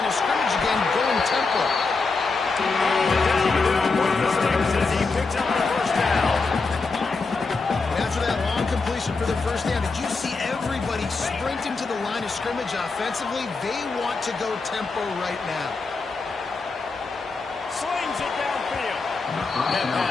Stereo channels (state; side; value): quieter; right; 4.1 dB